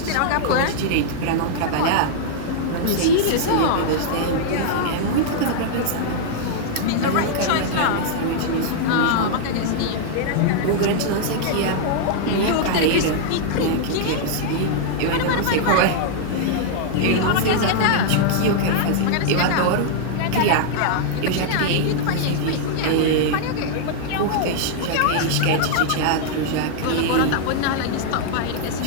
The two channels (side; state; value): both; different; correlation -0.01